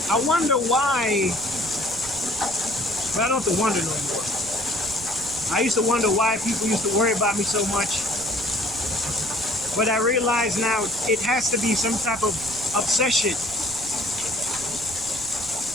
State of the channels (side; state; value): right; noise; rumble, 18 dB below the sound